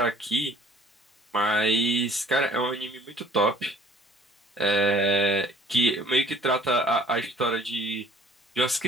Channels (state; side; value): normal; both; correlation 0.55